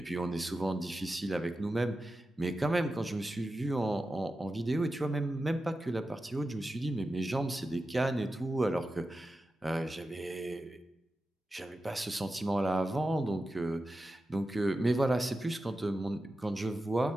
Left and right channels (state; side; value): normal; both; correlation 0.92